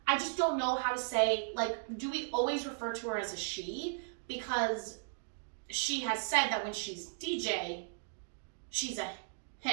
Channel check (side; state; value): left; silent; digital silence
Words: I just don't know how to say, do we always refer to her as a she? Because she has said that when she's DJ, she's a